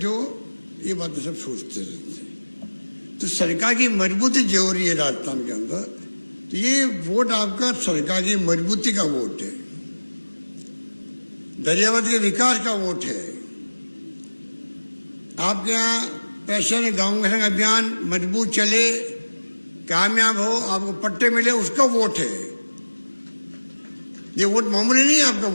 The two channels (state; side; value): inverted; both; correlation -1.00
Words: ये बातें सब सोचते रहते हैं। तो सरकार की मजबूती जो हो रही है राजस्थान के अंदर, तो ये वोट आपका सरकार की मजबूती का वोट है, दरियावत के विकास का वोट है। आपके यहाँ पैशन गाँव संग अभियान मजबूत चले, कामयाब हो, आपको पट्टे मिले, उसका वोट है। ये वोट मामूली नहीं है आपका